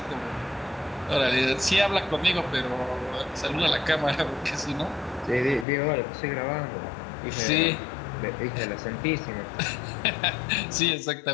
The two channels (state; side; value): drops out; right; at 5.7 s